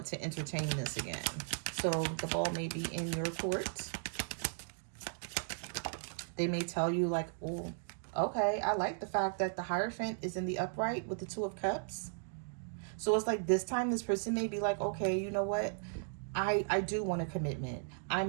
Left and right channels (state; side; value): silent; left; digital silence